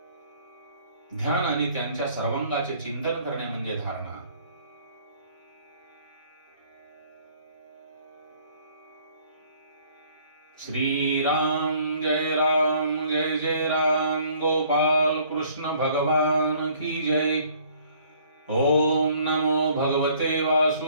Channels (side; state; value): both; inverted; correlation -0.58